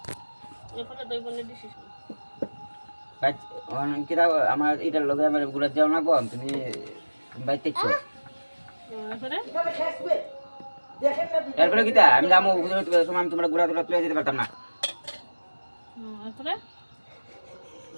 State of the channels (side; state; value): both; inverted; correlation -1.00